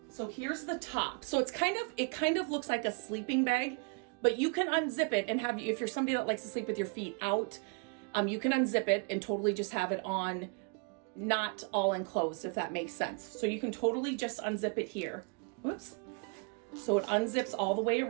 so here's the top. So it kind of looks like a sleeping bag, but you can unzip it and if you're somebody that likes to sleep with your feet out, you can unzip it and totally just have it on, not all enclosed, if that makes sense. So you can totally just unzip it here. Whoops. So it unzips all the way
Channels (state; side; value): quieter; left; 35.1 dB